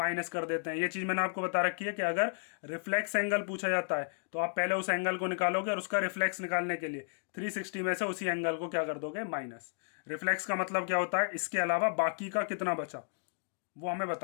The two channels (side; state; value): right; silent; digital silence